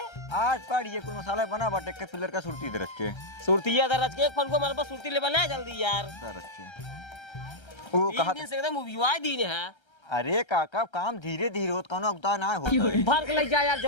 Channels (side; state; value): right; late; 1.3 ms